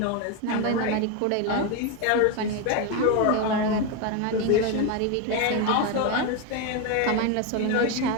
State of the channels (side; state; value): both; different; correlation 0.02